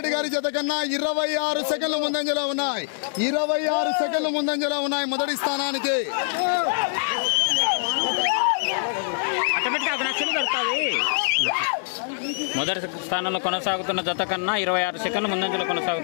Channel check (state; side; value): silent; right; digital silence